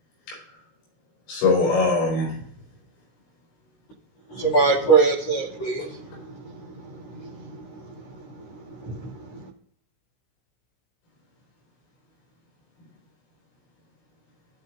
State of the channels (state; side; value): late; right; 16 ms